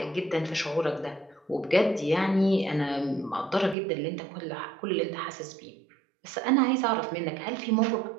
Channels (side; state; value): left; drops out; at 3.8 s